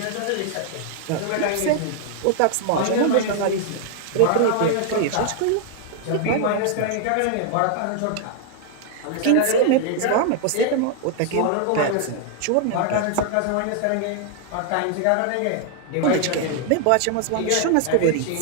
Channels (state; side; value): different; both; correlation 0.00